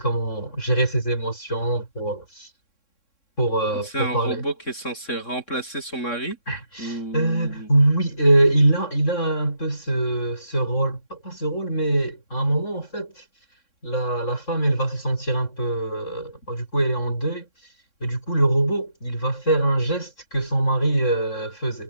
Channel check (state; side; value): late; right; 3.6 ms